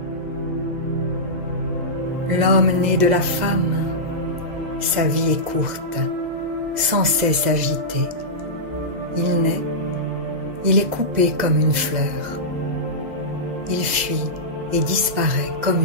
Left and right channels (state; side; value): late; left; 2.0 ms